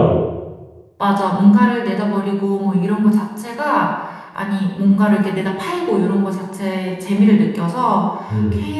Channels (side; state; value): both; identical; correlation 1.00